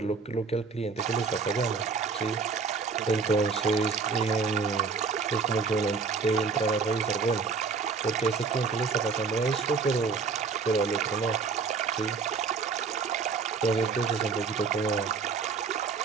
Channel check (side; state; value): left; quieter; 5.0 dB